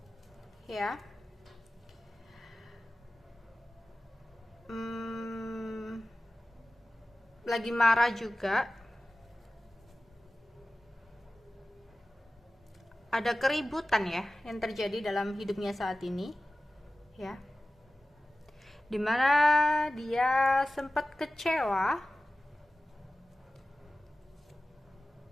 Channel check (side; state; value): both; normal; correlation 0.96